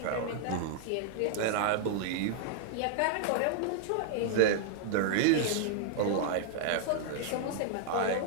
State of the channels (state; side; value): different; both; correlation 0.00